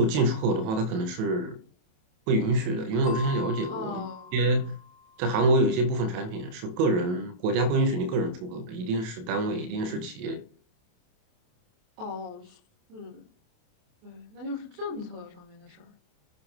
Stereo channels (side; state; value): left; late; 28 ms